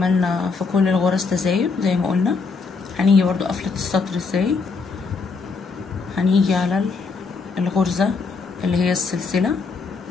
في كل الغرز تزايد زي ما قلنا. هنيجي برضو قفلة السطر ازاي، هنيجي على الغرزة اللي هي السلسلة،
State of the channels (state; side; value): quieter; right; 4.6 dB